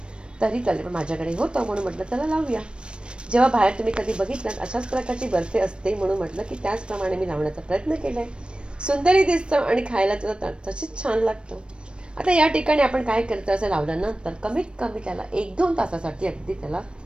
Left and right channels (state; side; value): late; left; 0.056 ms